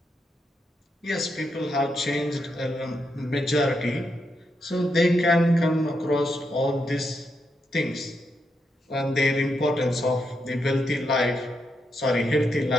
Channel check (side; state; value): both; normal; correlation 0.82